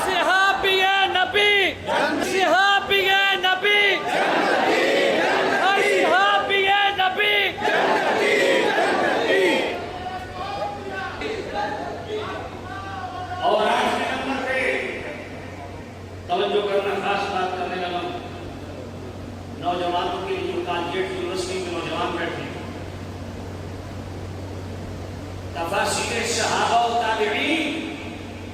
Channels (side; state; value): both; identical; correlation 1.00